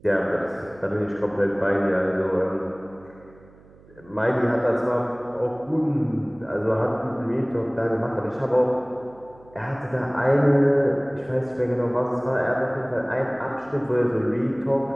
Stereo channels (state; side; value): noise; right; hum, 25 dB below the sound